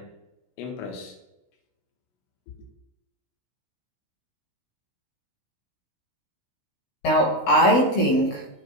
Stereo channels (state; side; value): late; right; 16 ms